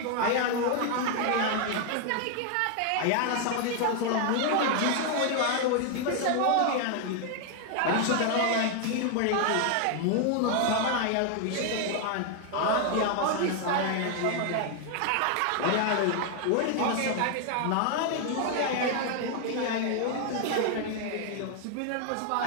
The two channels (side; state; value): both; different; correlation 0.00